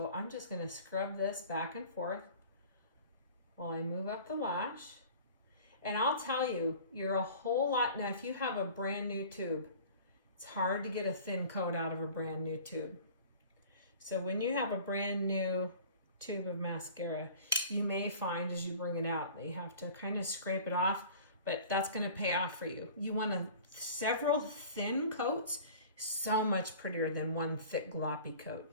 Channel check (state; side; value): inverted; both; correlation -0.44